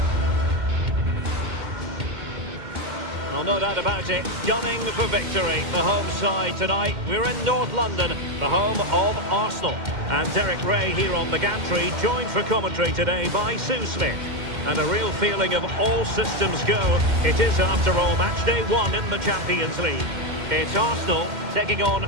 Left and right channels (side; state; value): left; late; 2.1 ms